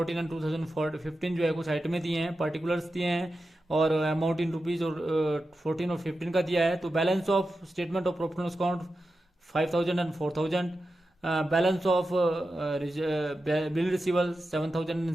एंड 2015 जो है कुछ आइटमें दिए हैं, पर्टिकुलर्स दिए हैं और अमाउंट इन रुपीज और 14 और 15 का दिया है। तो balance of statement of profit and loss account 5,000 and 4,000। Balance of bill रिसीवल 7,000 and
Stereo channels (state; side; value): normal; both; correlation 0.91